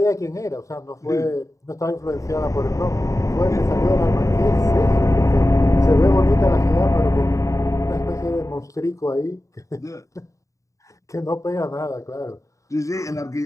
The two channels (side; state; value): right; late; 0.16 ms